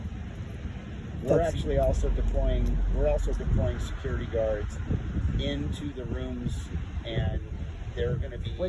We're actually also deploying security guards into the rooms, and they're going to be...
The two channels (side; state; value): both; identical; correlation 1.00